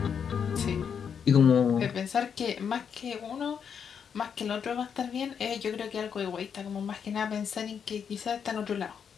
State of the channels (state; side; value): quieter; right; 7.2 dB